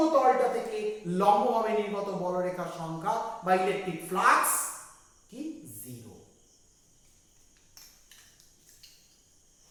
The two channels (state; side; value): identical; both; correlation 1.00